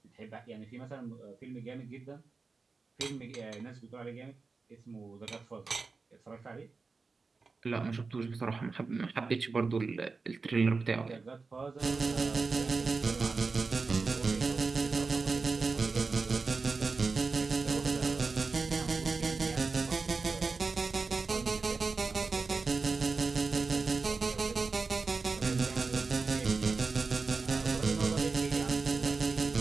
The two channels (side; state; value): left; quieter; 4.3 dB